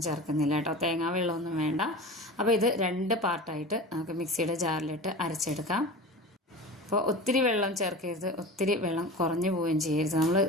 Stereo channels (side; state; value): both; normal; correlation 0.33